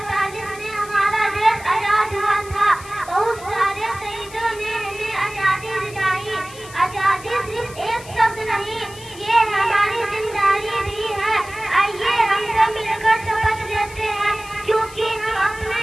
में हमारा देश आजाद हुआ था। बहुत सारे शहीदों ने हमें आजादी दिलाई। आजादी सिर्फ एक शब्द नहीं, ये हमारी जिम्मेदारी भी है। आइए हम सब मिलकर शपथ लेते हैं, क्योंकि हम अपने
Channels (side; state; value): left; noise; hiss, 18 dB below the sound